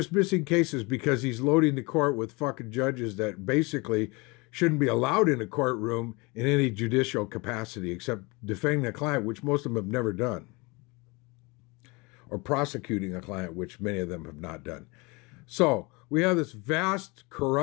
cases because he's loading the court with fucking judges that basically shouldn't be allowed in a courtroom in any judicial capacity except defending a client, which most of them have never done, or prosecuting a client, which many of them have not done. So we have this vast,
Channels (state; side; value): quieter; right; 26.7 dB